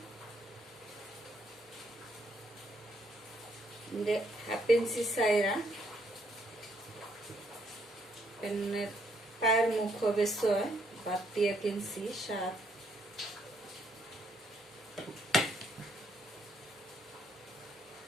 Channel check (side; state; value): both; normal; correlation 0.71